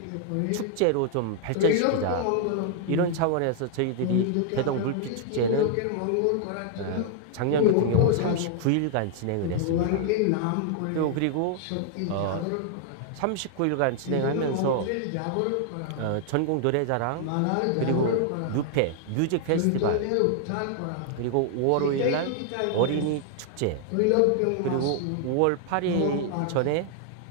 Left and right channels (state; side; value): different; both; correlation 0.00